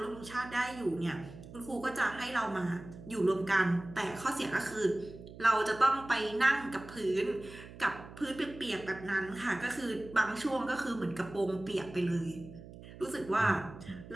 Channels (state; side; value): noise; right; hum, 16 dB below the sound